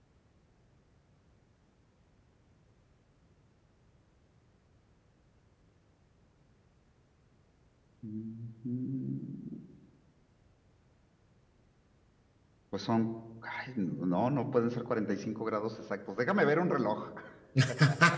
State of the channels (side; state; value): both; identical; correlation 1.00